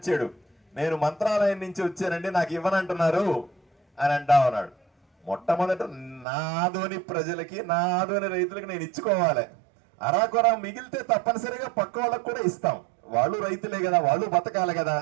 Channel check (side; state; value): left; drops out; at 6.2 s